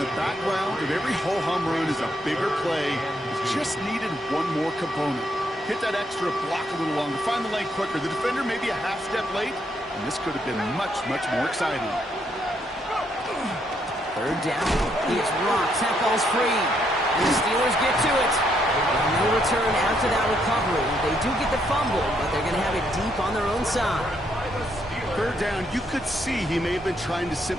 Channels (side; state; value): both; normal; correlation 0.74